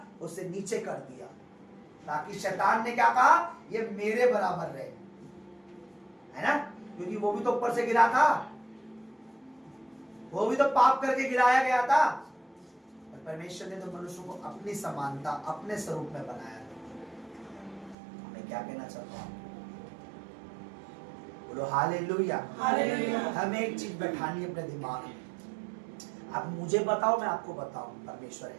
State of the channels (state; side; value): drops out; left; at 17.9 s